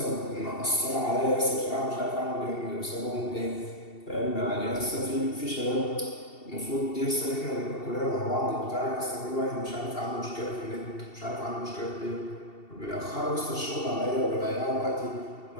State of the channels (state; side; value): late; right; 2.7 ms